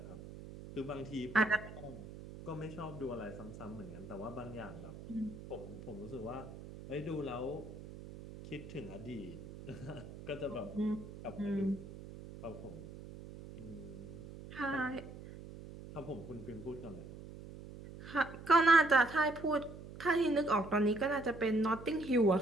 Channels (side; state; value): right; noise; hum, 13 dB below the sound